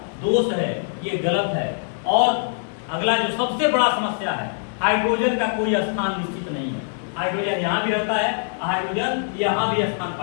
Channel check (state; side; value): silent; right; digital silence